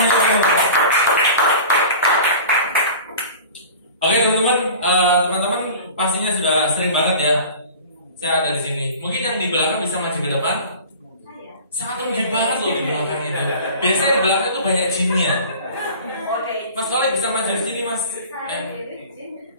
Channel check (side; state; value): both; inverted; correlation -0.40